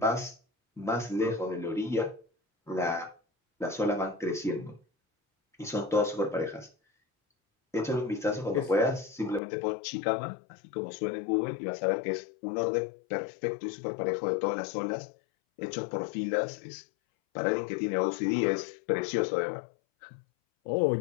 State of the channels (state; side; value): drops out; right; at 9.4 s